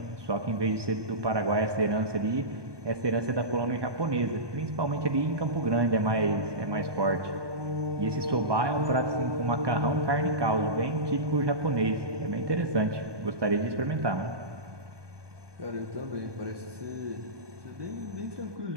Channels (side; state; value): left; late; 1.2 ms